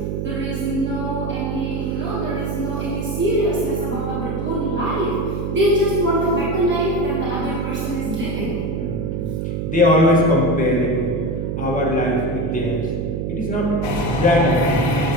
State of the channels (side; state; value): right; noise; hum, 2 dB below the sound